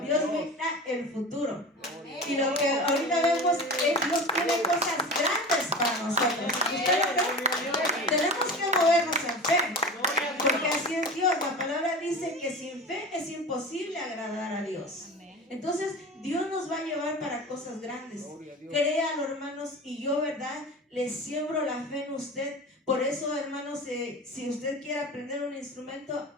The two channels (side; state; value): both; normal; correlation 0.31